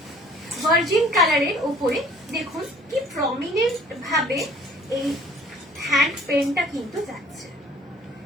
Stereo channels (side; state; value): both; normal; correlation 0.53